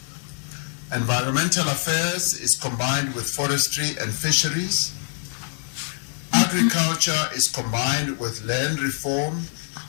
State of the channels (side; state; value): right; silent; digital silence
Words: Environmental affairs is combined with forestry and fisheries. Agriculture is combined with land reform